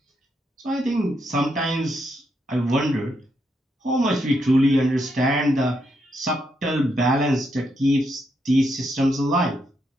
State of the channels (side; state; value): both; normal; correlation 0.79